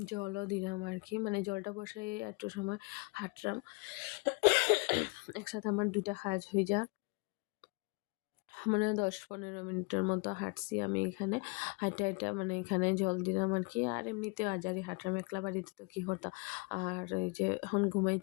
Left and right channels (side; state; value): right; quieter; 29.6 dB